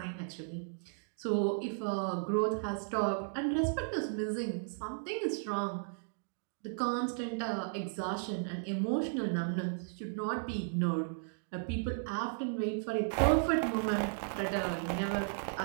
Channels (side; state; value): left; silent; digital silence